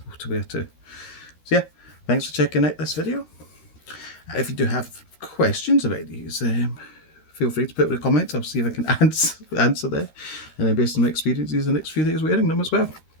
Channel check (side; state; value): right; late; 13 ms